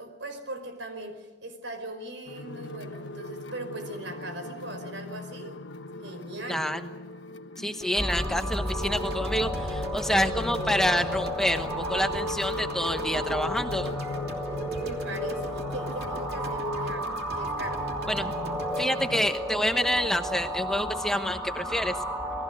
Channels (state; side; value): normal; both; correlation 0.70